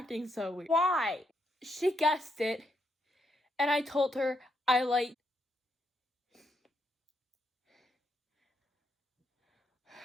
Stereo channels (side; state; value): both; normal; correlation 0.78